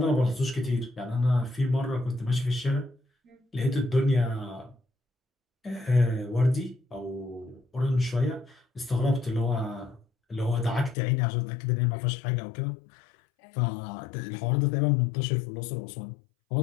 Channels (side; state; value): right; drops out; at 11.0 s